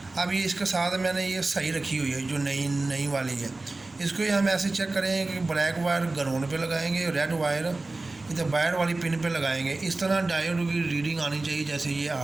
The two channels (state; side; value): quieter; left; 3.2 dB